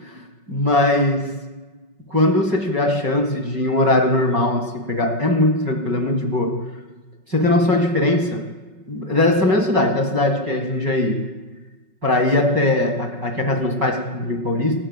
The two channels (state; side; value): late; left; 5.4 ms